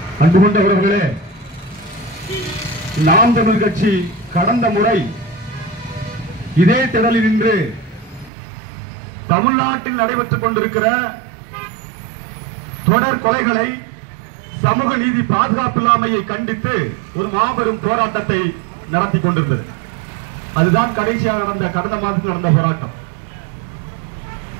அன்பு கொண்ட உறவுகளே, நாம் தமிழ் கட்சி கடந்த முறை இதே திடலில் நின்று தமிழ்நாட்டில் நடைபெற்றுக் கொண்டிருக்கிற தொடர் கொலைகளை, சமூக நீதி பாதுகாப்பில்லாமையை கண்டித்து ஒரு மாபெரும் போராட்டத்தை நடத்தி கொண்டிருந்தது. அதுதான் கடைசியாக நடந்த கடந்த மாதத்தில் நடந்த போராட்டம்.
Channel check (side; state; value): left; drops out; at 8.3 s